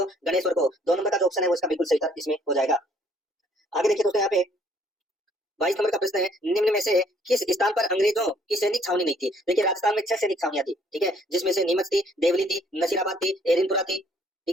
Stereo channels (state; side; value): normal; both; correlation 0.63